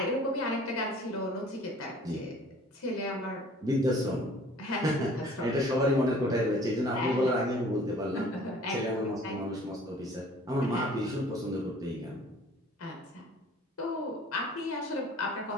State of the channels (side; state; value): both; normal; correlation 0.51